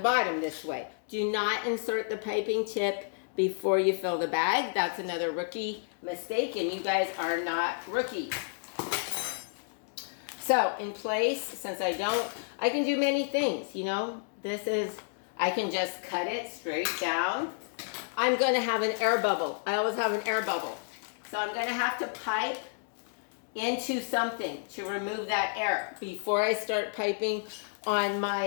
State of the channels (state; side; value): silent; right; digital silence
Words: this way. Do not insert the piping tip before you fill the bag. That's another rookie mistake, and you guys are not rookies. So in place, since I can do many things, you know. I can just cut it straight down. I'm going to have an air bubble. I always have an air bubble. So I'm going to have to pipe into something to remove that air before I start piping on